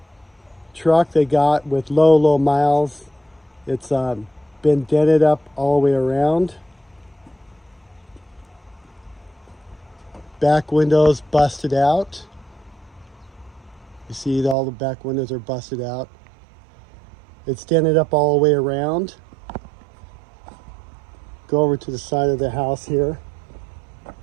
truck they got with low miles. It's been dented up all the way around. Back windows busted out. You see all the back windows are busted out. It's dented up all the way around. Go over to the side of the house here.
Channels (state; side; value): drops out; left; at 14.6 s